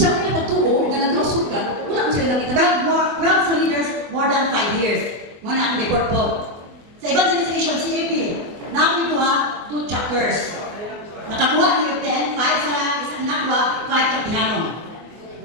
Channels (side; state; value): left; late; 24 ms